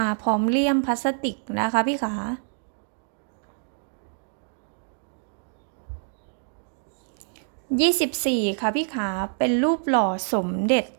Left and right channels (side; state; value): left; silent; digital silence